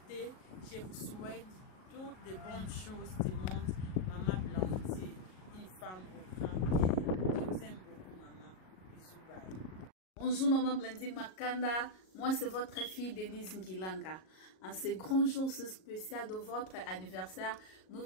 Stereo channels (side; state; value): right; late; 38 ms